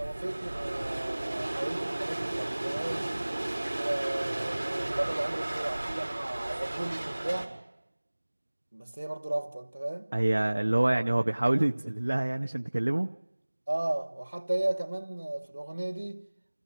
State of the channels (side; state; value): both; inverted; correlation -1.00